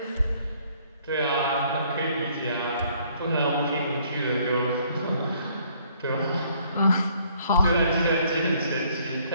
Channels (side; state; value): both; inverted; correlation -0.64